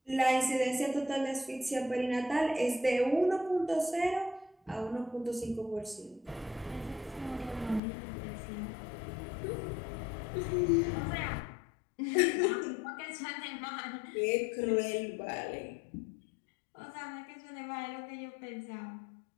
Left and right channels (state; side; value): drops out; right; at 7.8 s